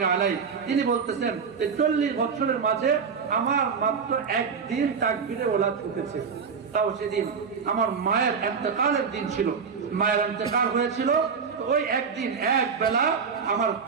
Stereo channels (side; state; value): left; quieter; 6.0 dB